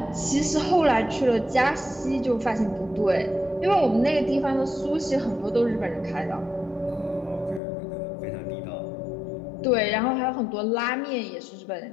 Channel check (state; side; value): drops out; right; at 7.6 s